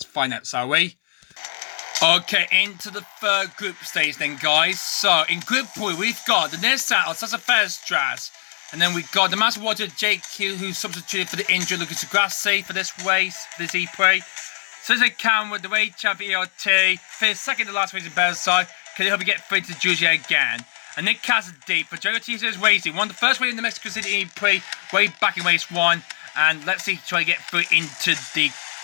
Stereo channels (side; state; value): right; silent; 64 dB below the other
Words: find out, shall we? Okay, into the third group stage then, guys. So in group 3, we've got the Nissan Alsassa Ferstras. And then we've got the Maserati JQ, who's substituted for the injured Lucas Grassi for this race, this E-PRIX. So there's a Cam with the race champion ERT. Finished second to last race in Bearside. Can he help you get through to Julia again? And Nick Cassidy for Jogo Teasers Racing. Won the first race in the Mexico City E-PRIX way back in race 1. And let's see, try to get through into the